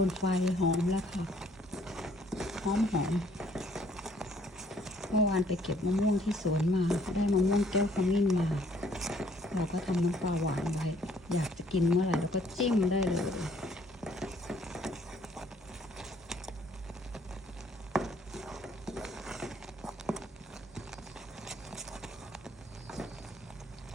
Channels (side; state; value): both; normal; correlation 0.62